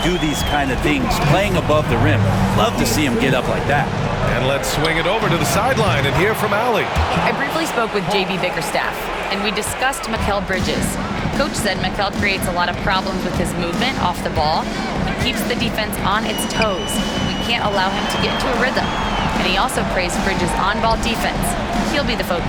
do these kind of things, playing above the rim. Love to see him get up like that. And let's swing it over to the sideline and hear from Allie. I briefly spoke with JB Bickerstaff, and we discussed Mikal Bridges. Coach said Mikal creates a lot of problems with his movement off the ball. He keeps the defense on its toes. We can't allow him to get into a rhythm. And he also praised Bridges' on-ball defense. He'll be the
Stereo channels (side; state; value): both; identical; correlation 1.00